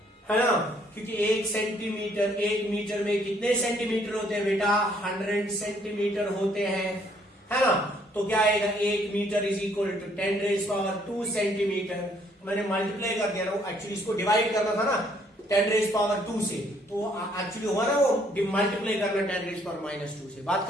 ना। क्योंकि 1 सेंटीमीटर, 1 मीटर में कितने सेंटीमीटर होते हैं बेटा, 100 सेंटीमीटर होते हैं, है ना। तो क्या आएगा, 1 metre is equal to 10⁻2 centimetre. मैंने मल्टीप्लाई कर दिया ना, एक्चुअली इसको डिवाइड करना था ना 10⁻2 से, तो एक्चुअली हुआ ना वो मल्टीप्लाई करना 10⁻2 से। बात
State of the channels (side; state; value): both; normal; correlation 0.65